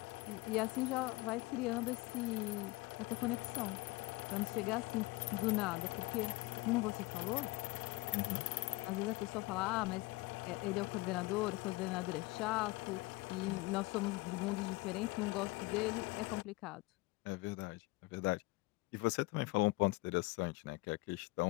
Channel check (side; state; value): right; quieter; 22.3 dB